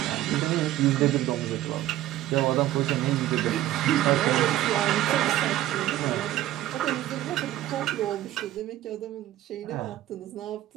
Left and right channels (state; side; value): quieter; left; 14.0 dB